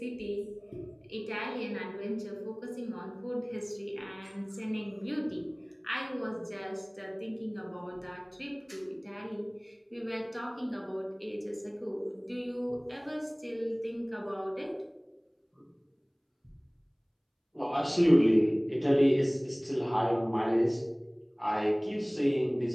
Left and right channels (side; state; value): both; identical; correlation 1.00